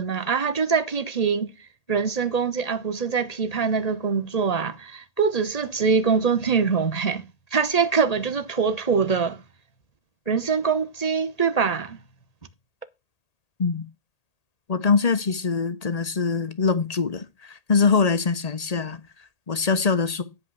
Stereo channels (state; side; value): late; right; 1.8 ms